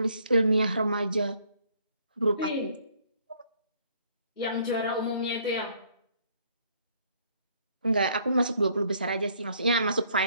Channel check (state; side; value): inverted; both; correlation -0.65